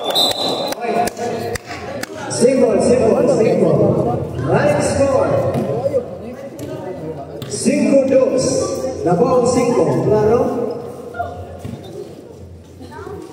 Simple. Right score. 5-2. Labang 5. Claro?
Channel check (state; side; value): identical; both; correlation 1.00